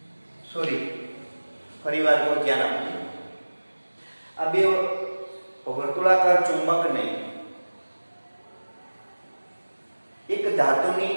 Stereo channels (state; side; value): inverted; both; correlation -1.00